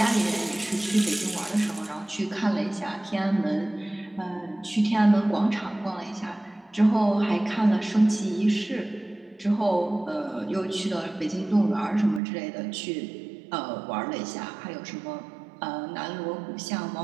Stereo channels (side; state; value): left; drops out; at 12.2 s